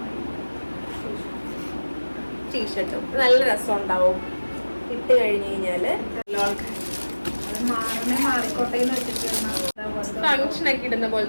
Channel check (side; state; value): both; inverted; correlation -1.00